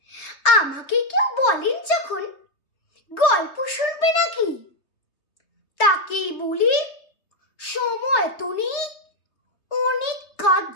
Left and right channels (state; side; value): late; right; 3.3 ms